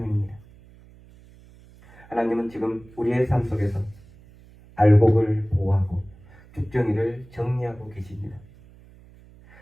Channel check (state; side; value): noise; right; hum, 24 dB below the sound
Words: 하나님은 지금 우리의 삶 속에서 알곡을 보호하고 쭉정이를 정리하고 계십니다.